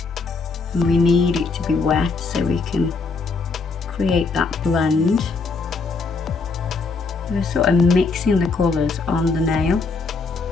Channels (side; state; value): right; quieter; 4.2 dB